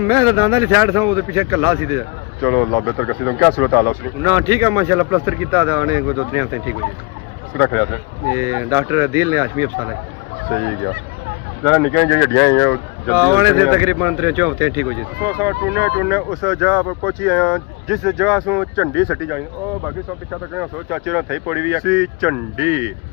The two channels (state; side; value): quieter; right; 28.7 dB